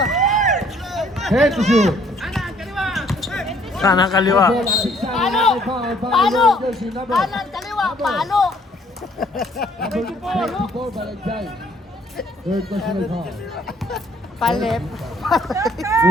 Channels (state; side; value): normal; both; correlation 0.62